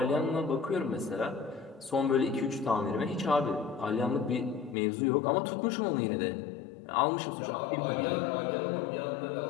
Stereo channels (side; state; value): right; drops out; at 4.8 s